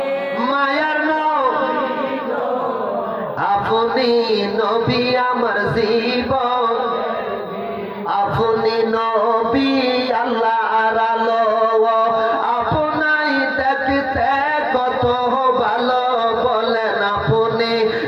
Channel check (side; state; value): both; identical; correlation 1.00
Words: মায়ার আপনি নবী আমার জীবন, আপনি নবী আল্লাহর আলো, আপনাই দেখতে কত ভালো, বলেন আপনি